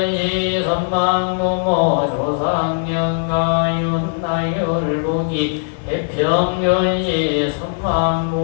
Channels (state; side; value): silent; right; digital silence